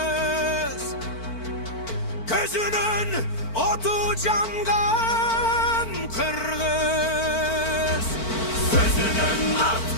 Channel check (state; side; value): late; right; 4.5 ms